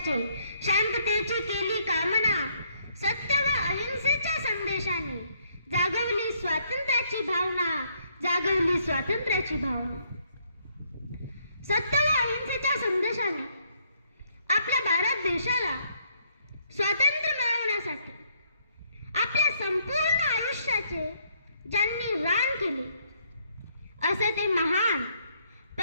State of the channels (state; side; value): inverted; both; correlation -0.70